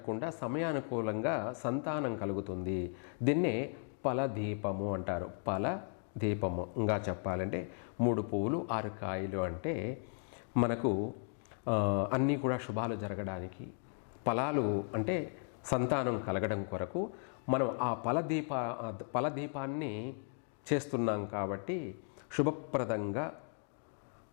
సమయానుకూలంగా సంతానం కలుగుతుంది. దీన్నే ఫలదీపము అంటారు. ఫలదీపము ఇంకా చెప్పాలంటే 3 పువ్వులు 6 కాయలు అంటే మనకు అన్నీ కూడా శుభాలు జరగడానికి, ఫలాలు అంటే సంతానం కలగడం కొరకు మనం ఆ ఫలదీపాన్ని చేస్తున్నాం. కాబట్టి శుభప్రదంగా,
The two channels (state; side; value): silent; right; 54 dB below the other